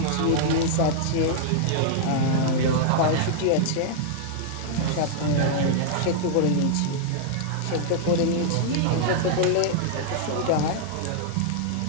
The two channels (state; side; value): different; both; correlation -0.01